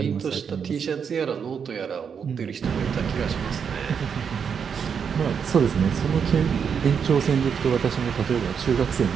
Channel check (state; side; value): quieter; left; 6.9 dB